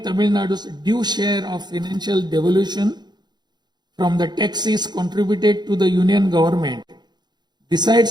Tamil Nadu's due share of financial devolution from the taxes contributed to the Union Government.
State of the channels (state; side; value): late; left; 0.21 ms